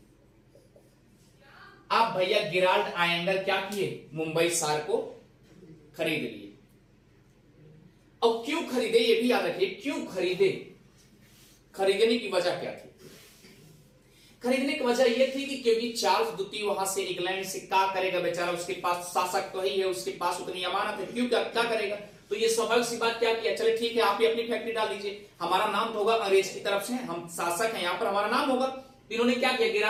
अब भैया गेराल्ड आयंगर क्या किए? मुंबई शहर को खरीद लिए। अब क्यों खरीदे ये भी याद रखिए, क्यों खरीदे? खरीदने की वजह क्या थी? खरीदने की वजह यह थी कि क्योंकि चार्ल्स द्वितीय वहां से इंग्लैंड से क्या करेगा बेचारा, उसके पास शासक तो ही है, उसके पास उतनी अमानत है, क्यों क्या करेगा? तो ये स्वाभाविक सी बात क्या किया, चले ठीक है आप ही अपनी फैक्ट्री डाल दीजिए, हमारा नाम तो होगा, अंग्रेज की तरफ से हम शासक हैं, यहां पर हमारा नाम होगा। तो इन्होंने क्या किया,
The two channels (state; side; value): identical; both; correlation 1.00